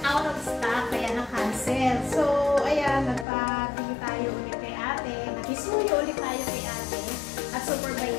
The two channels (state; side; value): drops out; right; at 3.2 s